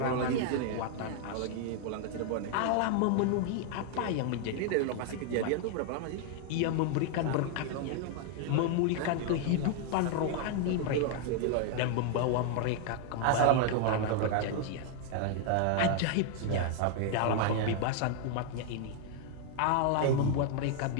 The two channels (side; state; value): both; different; correlation 0.00